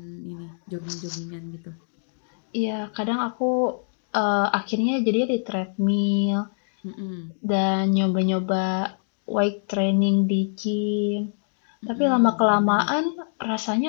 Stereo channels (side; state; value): right; silent; digital silence